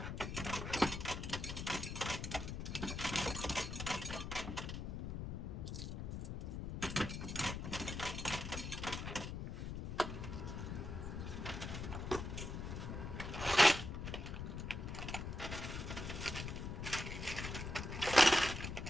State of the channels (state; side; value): noise; left; rumble, 4 dB below the sound